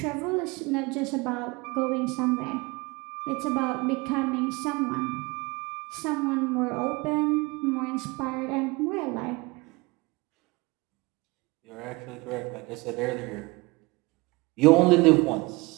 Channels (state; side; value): quieter; left; 24.6 dB